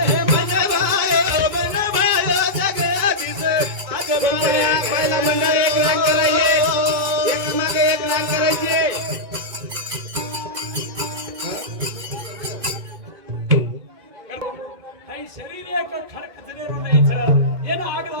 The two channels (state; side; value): late; left; 2.2 ms